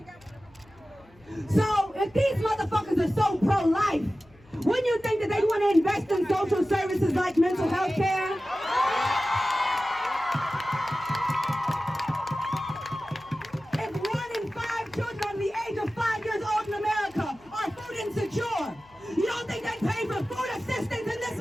So if these motherfuckers are so pro-life, wouldn't you think that they want to invest in social services like mental health care? If 1 in 5 children under the age of 5 years old in America are food insecure, you don't think they pay for food assistance in this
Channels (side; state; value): left; noise; hum, 28 dB below the sound